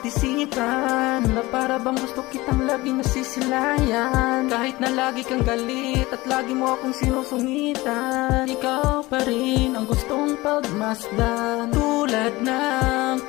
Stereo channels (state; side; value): quieter; right; 20.5 dB